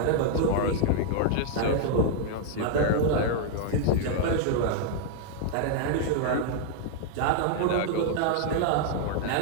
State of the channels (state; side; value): different; both; correlation 0.00